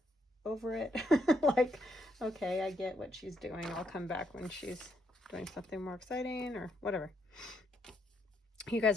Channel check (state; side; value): normal; both; correlation 0.76